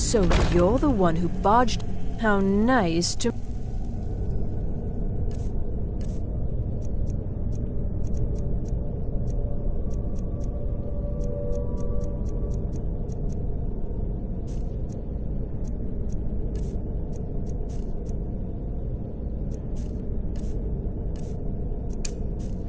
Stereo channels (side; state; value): both; identical; correlation 1.00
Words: So you're the one who barged... How nice to...